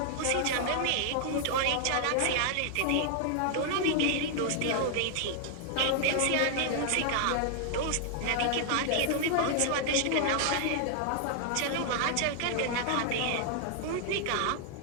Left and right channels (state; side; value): different; both; correlation 0.00